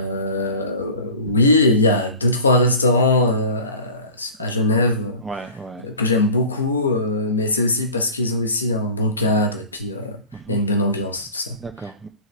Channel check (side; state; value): both; inverted; correlation -0.39